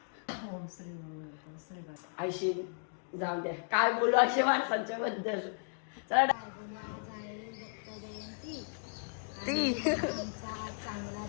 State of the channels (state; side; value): silent; right; digital silence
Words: आयशी जाऊ द्या, काय बोलू असे माणसांच्या बद्दल. चला ती